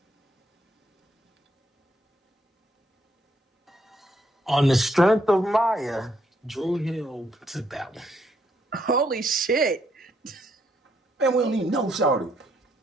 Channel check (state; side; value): normal; both; correlation 0.73